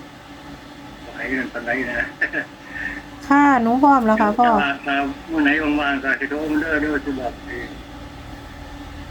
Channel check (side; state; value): both; identical; correlation 1.00